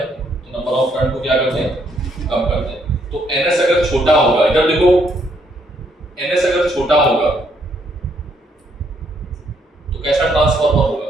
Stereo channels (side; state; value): both; normal; correlation 0.71